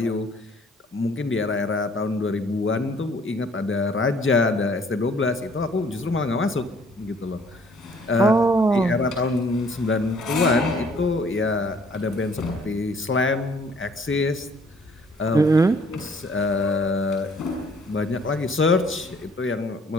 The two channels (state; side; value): normal; both; correlation 0.59